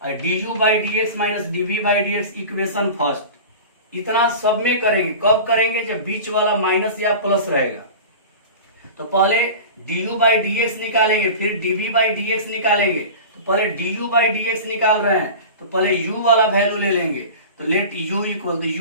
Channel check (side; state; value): both; inverted; correlation -0.34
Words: और du by d x minus dv by d x, equation first. इतना सब में करेंगे, कब करेंगे, जब बीच वाला माइनस या प्लस रहेगा। तो पहले du बाई डी एक्स निकालेंगे, फिर dv बाई डी एक्स निकालेंगे। तो पहले du बाई डी एक्स निकाल रहे हैं तो पहले u वाला वैल्यू ले लेंगे, तो लेट u इक्वल, तो